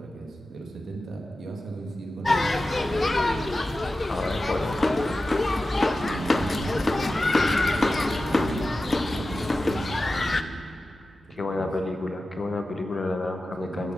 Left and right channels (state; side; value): normal; both; correlation 0.94